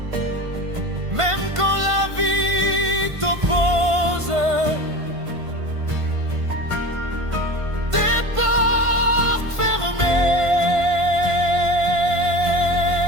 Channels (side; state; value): left; late; 1.5 ms